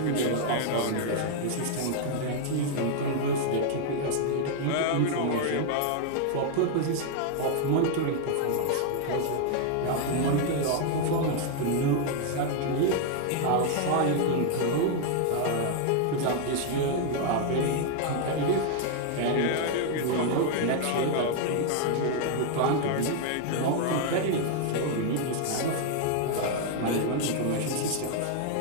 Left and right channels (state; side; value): different; both; correlation 0.00